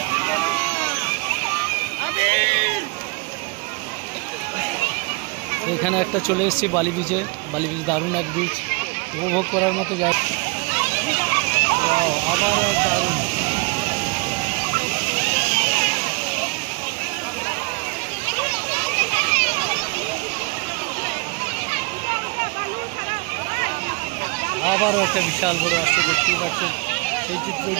এখানে একটা চলে এসেছি বালি বিচে। বালি বিচ দারুণ এক বিচ, উপভোগ করার মতো জায়গা। আবার দারুণ আবারও একটা বিশাল বড় আসছে, দেখতেই পাচ্ছেন সেই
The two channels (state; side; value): quieter; left; 30.3 dB